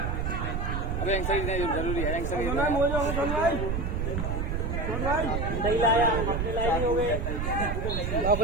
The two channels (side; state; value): right; noise; rumble, 1 dB below the sound